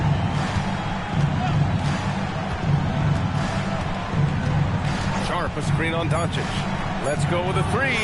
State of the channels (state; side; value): identical; both; correlation 1.00